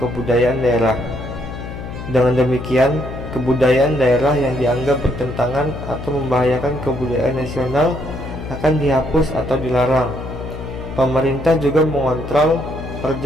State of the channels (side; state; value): left; noise; hum, 9 dB below the sound